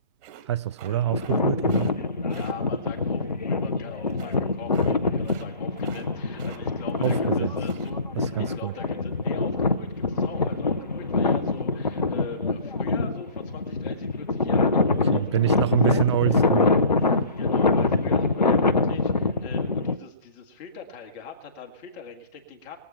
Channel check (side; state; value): both; inverted; correlation -0.43